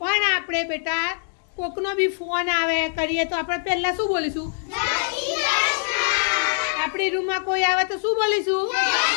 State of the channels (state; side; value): silent; right; digital silence